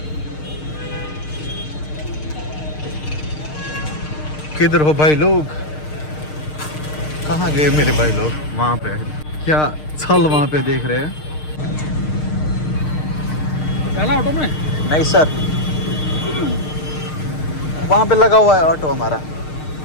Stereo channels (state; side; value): late; right; 6.5 ms